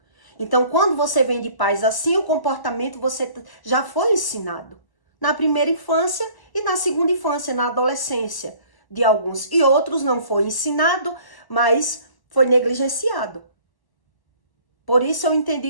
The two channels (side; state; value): right; late; 1.0 ms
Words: Então, quando você vem de pais assim, o comportamento você já foi ensinado. Na primeira infância e na segunda infância, na adolescência de alguns. E outros não foi ensinado, mas foi negligenciado. Por isso eu